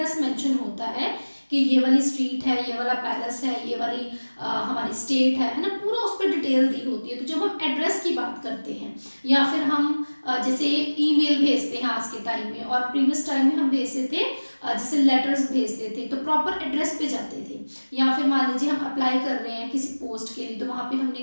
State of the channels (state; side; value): inverted; both; correlation -1.00